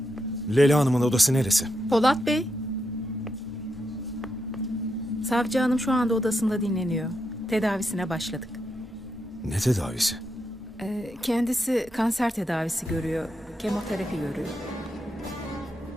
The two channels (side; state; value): both; normal; correlation 0.83